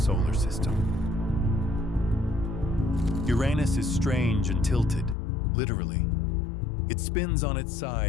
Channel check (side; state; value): right; drops out; at 5.2 s